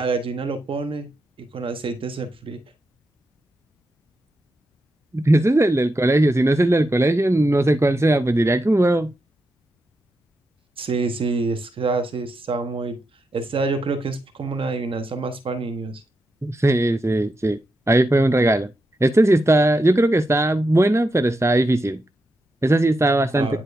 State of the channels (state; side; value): normal; both; correlation 0.86